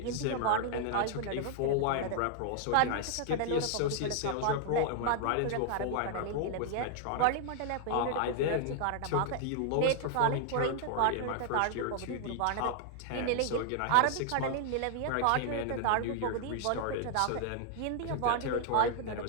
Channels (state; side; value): different; both; correlation 0.00